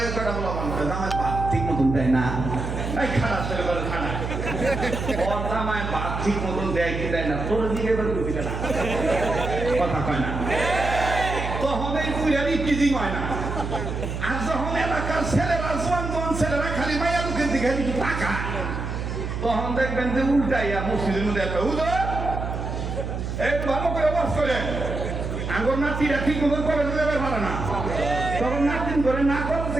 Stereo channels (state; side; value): noise; right; hum, 4 dB below the sound